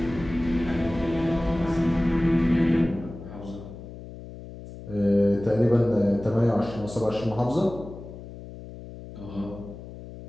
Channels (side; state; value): left; noise; hum, 14 dB below the sound